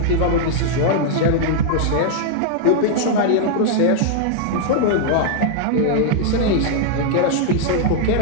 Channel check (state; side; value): different; both; correlation -0.01